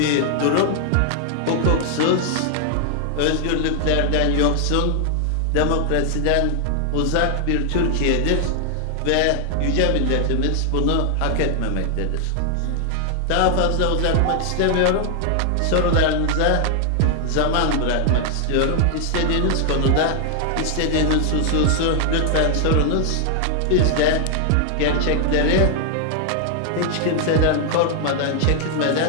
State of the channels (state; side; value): different; both; correlation 0.00